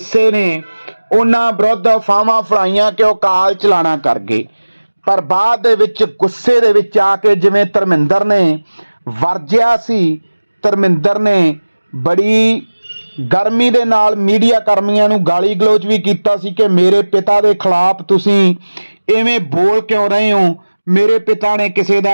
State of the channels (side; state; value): both; inverted; correlation -1.00